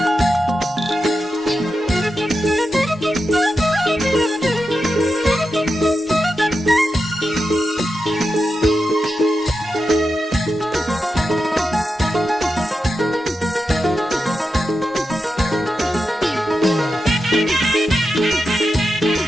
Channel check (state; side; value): normal; both; correlation 0.89